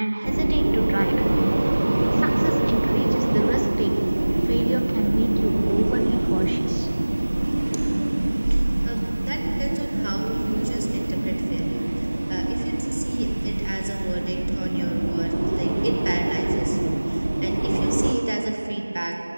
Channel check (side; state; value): both; inverted; correlation -1.00